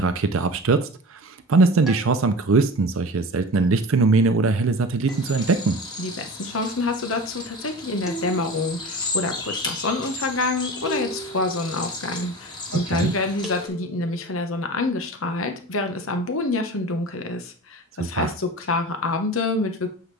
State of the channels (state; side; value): normal; both; correlation 0.34